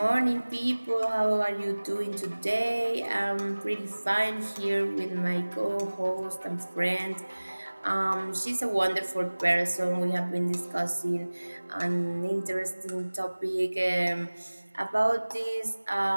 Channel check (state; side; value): inverted; both; correlation -1.00